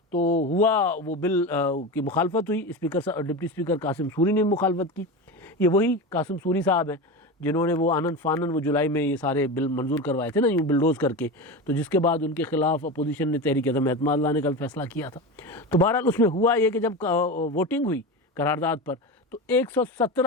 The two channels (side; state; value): both; normal; correlation 0.24